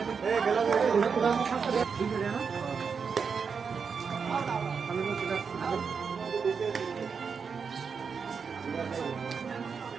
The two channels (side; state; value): left; quieter; 5.9 dB